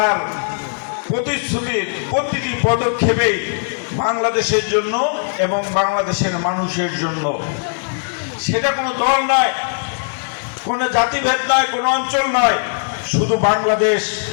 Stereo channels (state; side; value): silent; right; digital silence